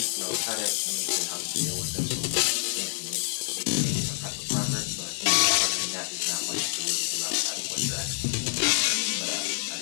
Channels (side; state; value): right; silent; digital silence